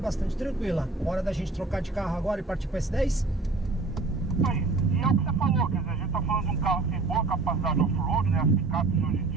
tranquila. Hora da gente trocar de carro agora e partir para S10? Aí, e é o que você falou, quer dizer, a gente está falando de um carro que tem boa capacidade off-road, né? As picapes hoje em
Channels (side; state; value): left; quieter; 3.6 dB